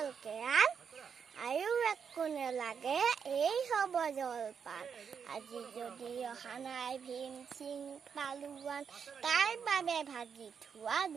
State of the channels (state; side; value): quieter; left; 6.8 dB